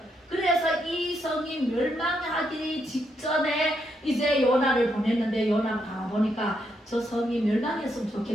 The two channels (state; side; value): normal; both; correlation 0.78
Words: 그래서 이 성이 멸망하기 직전에 이제 요나를 보냈는데, 요나가 가보니까 저 성이 멸망했으면